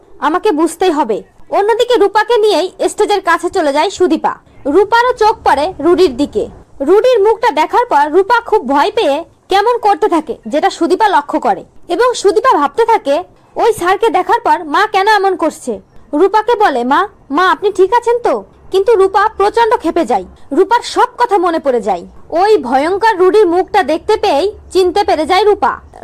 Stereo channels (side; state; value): both; identical; correlation 1.00